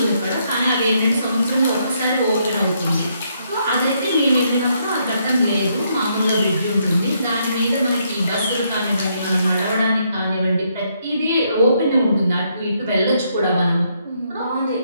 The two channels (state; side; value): inverted; both; correlation -0.74